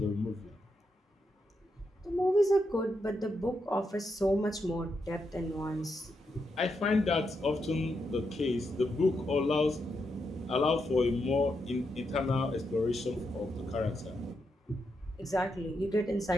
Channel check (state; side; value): normal; both; correlation 0.83